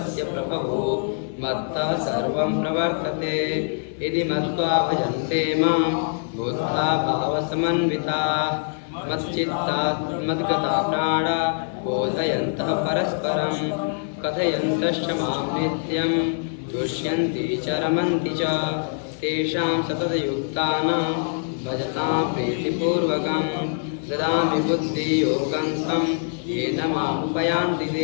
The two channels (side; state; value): right; silent; 63 dB below the other